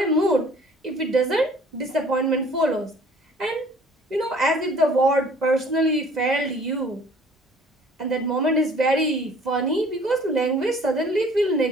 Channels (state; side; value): normal; both; correlation 0.53